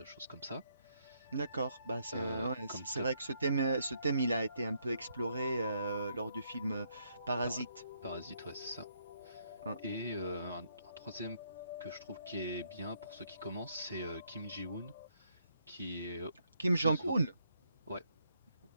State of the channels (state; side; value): inverted; both; correlation -0.74